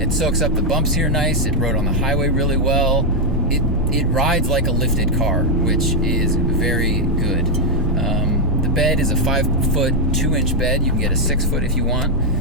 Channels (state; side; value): normal; both; correlation 0.00